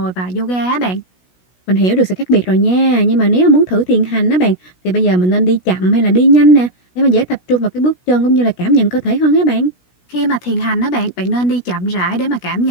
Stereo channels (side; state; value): right; late; 16 ms